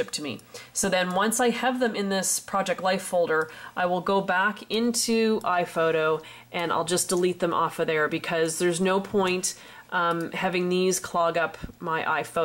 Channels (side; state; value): both; identical; correlation 1.00